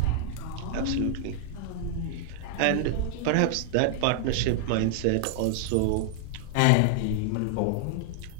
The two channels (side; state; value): both; different; correlation 0.00